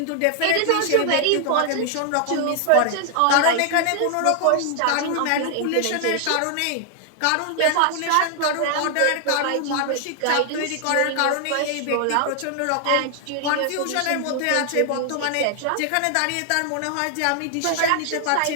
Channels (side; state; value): both; different; correlation 0.00